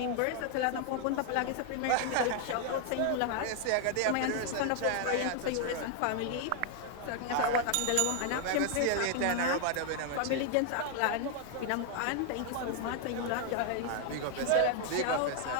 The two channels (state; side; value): different; both; correlation 0.00